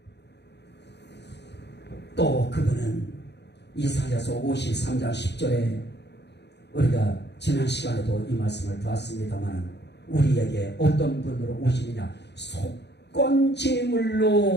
또 그분은 이사야서 53장 10절에 우리가 지난 시간에도 이 말씀을 봤습니다만 우리에게 어떤 분으로 오시느냐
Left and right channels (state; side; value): late; right; 0.50 ms